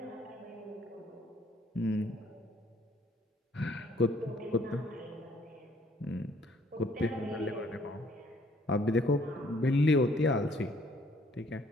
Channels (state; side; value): normal; both; correlation 0.63